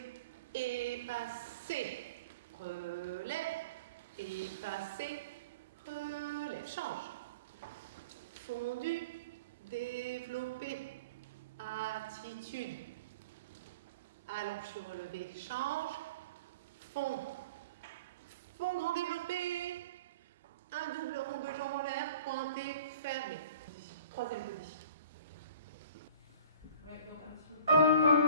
Et passer. Relève. Et passer. Relève. Change. Fondu. Développé. Attitude. Allonge sur relevé. Change. Fond. Fond grand développé. Un double rond de jambes en l'air. Pointé. Fermé. Troisième position. Ouais, donc un petit peu.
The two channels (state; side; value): inverted; both; correlation -0.41